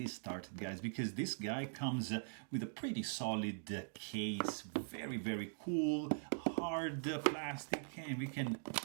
started, guys, because this guy comes with a pretty solid case. Very cool, hard plastic, and we can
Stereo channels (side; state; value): left; silent; digital silence